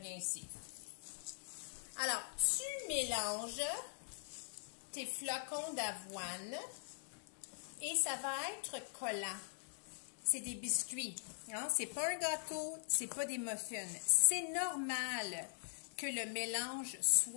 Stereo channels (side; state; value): right; silent; digital silence